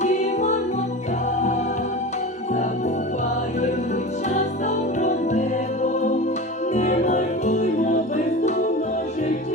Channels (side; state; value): both; normal; correlation 0.30